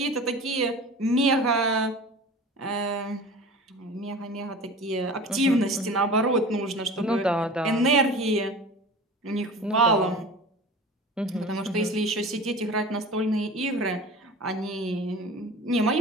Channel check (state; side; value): normal; both; correlation 0.38